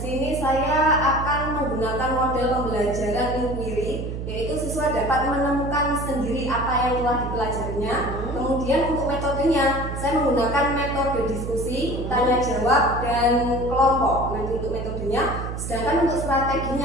saya akan menggunakan model pembelajaran inquiry, yaitu siswa dapat menemukan sendiri apa yang telah dipelajarinya. Kemudian untuk metodenya saya menggunakan metode diskusi, tanya jawab, dan kelompok. Nanti untuk metodenya, sedangkan untuk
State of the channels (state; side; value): noise; right; hum, 6 dB below the sound